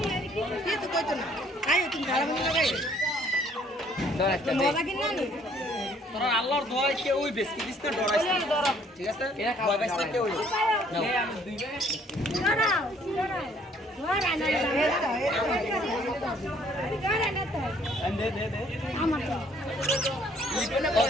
কিছু কইতো না আই তুমি ধারা মনে লাগাই ধর একটা দে মজা কিনা নি তোরা আল্লাহর দোয়ায় কে ওই বেশি দিস না ডরাইস না ঠিক আছে এরা খাওয়া ভয় পাইছ না কে ওই নাও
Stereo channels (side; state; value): both; normal; correlation 0.61